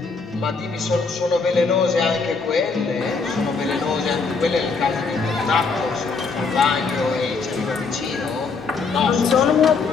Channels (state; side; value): quieter; right; 4.6 dB